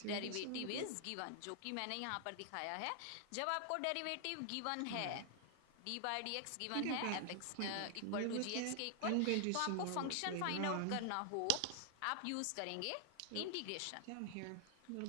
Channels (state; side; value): different; both; correlation 0.00